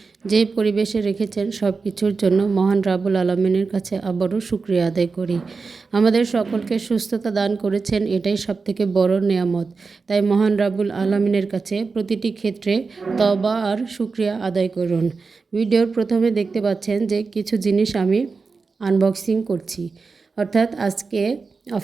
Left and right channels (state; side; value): quieter; left; 4.5 dB